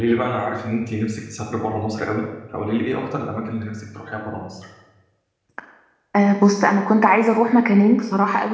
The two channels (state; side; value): identical; both; correlation 1.00